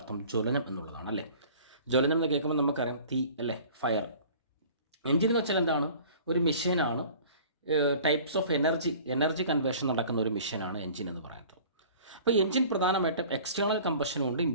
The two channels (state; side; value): inverted; both; correlation -0.46